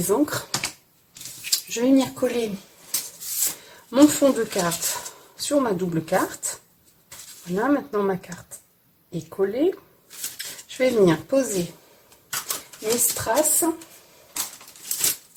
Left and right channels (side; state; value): both; identical; correlation 1.00